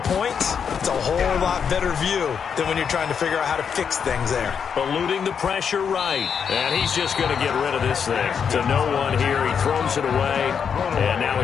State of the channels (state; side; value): quieter; right; 7.0 dB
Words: points, it's a whole lot better view than when you're trying to figure out how to fix things there. Eluding the pressure right. And he's just going to get rid of this thing. To no one here. He throws it away. And now